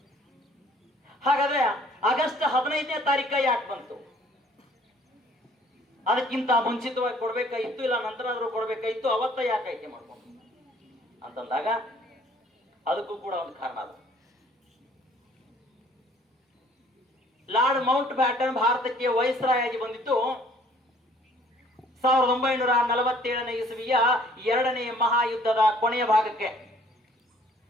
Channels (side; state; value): both; normal; correlation 0.58